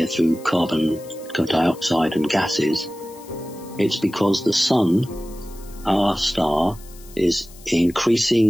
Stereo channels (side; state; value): left; noise; hiss, 22 dB below the sound